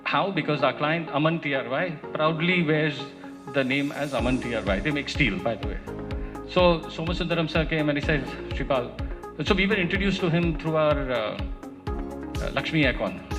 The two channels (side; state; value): both; identical; correlation 1.00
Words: how? Because our client Aman TRY proudly wears the name as Aman TRY. They make steel, by the way. So Somasundaram sir came and he said, "Shripal." So we were introduced to him through our Lakshmi Aircon,